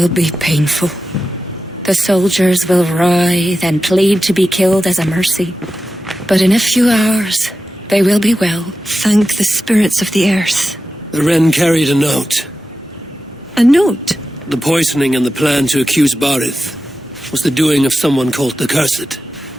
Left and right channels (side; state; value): both; normal; correlation 0.92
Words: be painful. The soldiers will writhe and plead to be killed as a mercy. But in a few hours, they will be well. Thank the spirits of the earth. The Wren carried a note. A note? The poisoning and the plan to accuse Bareth was the doing of someone called the Cursed.